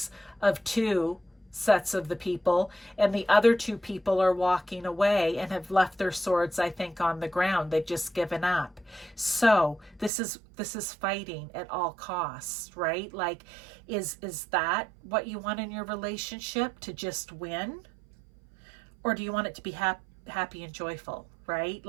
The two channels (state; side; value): drops out; left; at 10.1 s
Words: of 2 sets of the people, and the other 2 people are walking away and have left their swords, I think, on the ground. They've just given up. So this is fighting at all costs, right? Like, is that what you want in your relationship, to just win? Or do you want it to be happy and joyful, right?